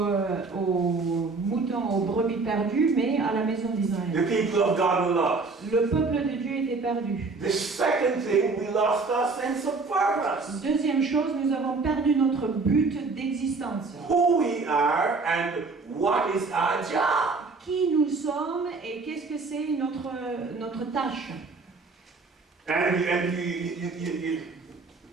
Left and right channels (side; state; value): left; quieter; 4.0 dB